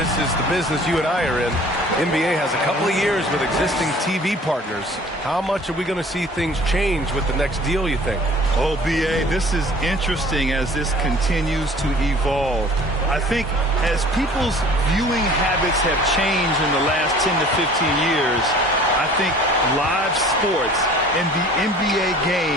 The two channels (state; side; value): normal; both; correlation 0.49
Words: is the business you and I are in. NBA has a couple of years with existing TV partners. How much are we going to see things change with the next deal, you think? Oh, B.A., this is interesting as this continues to evolve. I think as people's viewing habits have changed in the last 10 to 15 years, I think live sports and the NBA